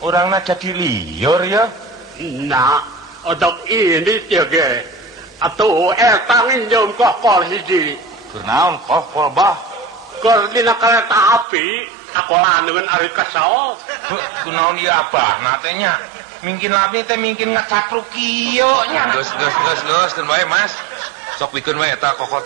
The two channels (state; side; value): drops out; left; at 11.5 s